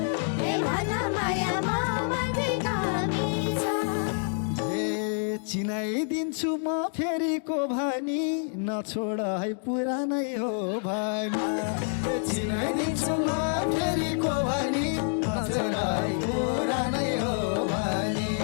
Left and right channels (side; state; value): right; silent; 60 dB below the other